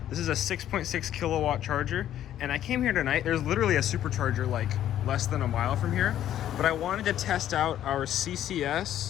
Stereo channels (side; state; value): right; quieter; 11.5 dB